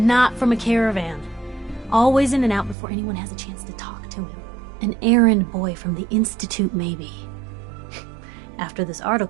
not from a caravan. Always in and out before anyone has a chance to talk to him. An errand boy from the Institute, maybe. After this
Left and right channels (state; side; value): drops out; left; at 2.8 s